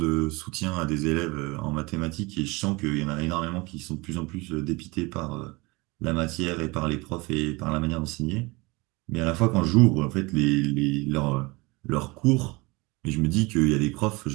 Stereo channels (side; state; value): left; quieter; 24.7 dB